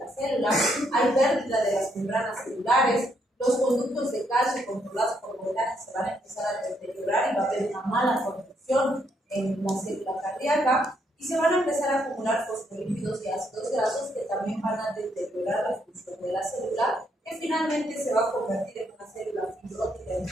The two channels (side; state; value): both; normal; correlation 0.74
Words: célula, hay pérdida de las membranas celulares, los conductos de calcio controlados por voltaje se van a empezar a deteriorar y va a haber una mala conducción en la célula cardíaca y se van a empezar a acumular fosfolípidos y ácidos grasos que también van a deteriorar la función de la célula, que finalmente se va a convertir en una célula fibrótica